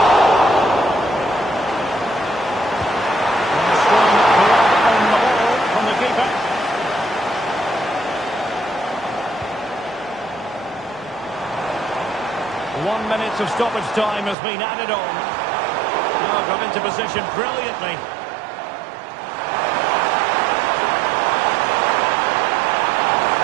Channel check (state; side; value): drops out; left; at 14.4 s